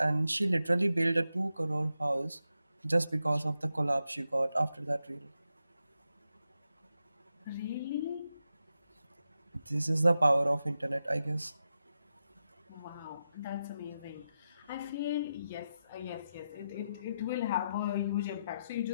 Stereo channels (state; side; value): inverted; both; correlation -0.88